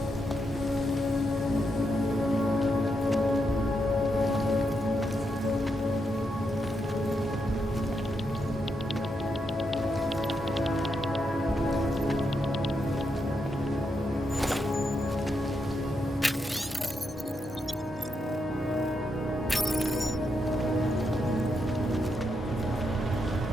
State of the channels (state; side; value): normal; both; correlation 0.82